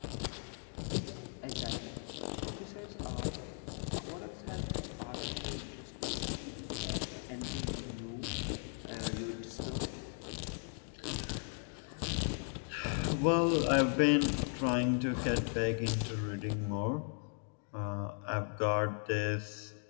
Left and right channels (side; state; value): right; silent; 53 dB below the other